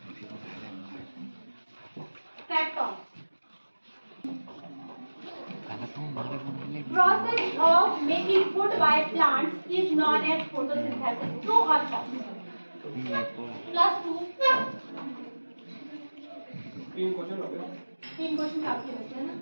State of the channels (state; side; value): inverted; both; correlation -1.00